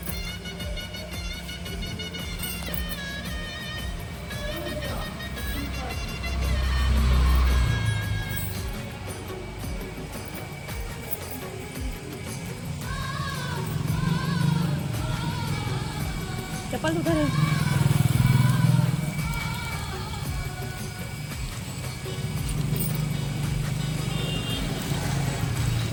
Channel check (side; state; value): both; identical; correlation 1.00